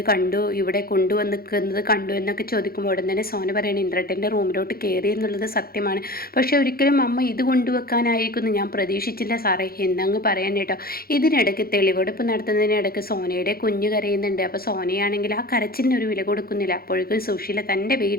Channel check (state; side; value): late; right; 0.44 ms